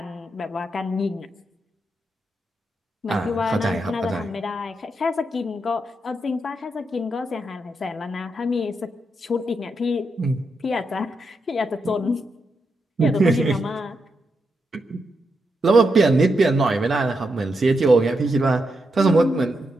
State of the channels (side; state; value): both; normal; correlation 0.84